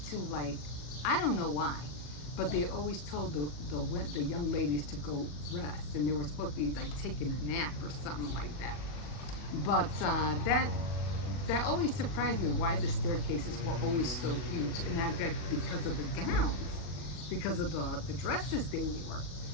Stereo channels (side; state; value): right; late; 39 ms